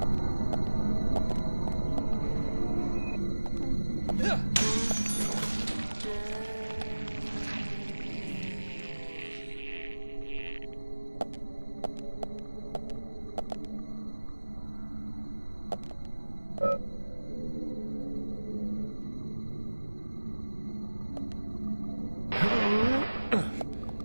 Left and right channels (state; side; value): inverted; both; correlation -1.00